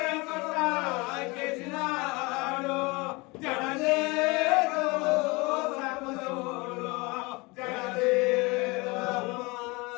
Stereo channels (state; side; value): quieter; right; 25.5 dB